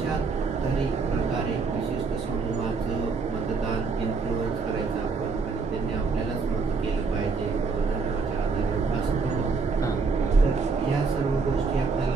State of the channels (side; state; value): left; quieter; 4.6 dB